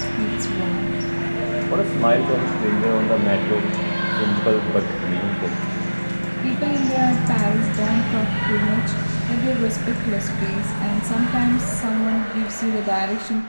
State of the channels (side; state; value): both; inverted; correlation -1.00